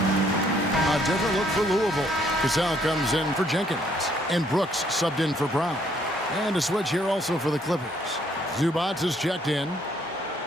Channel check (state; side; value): normal; both; correlation 0.67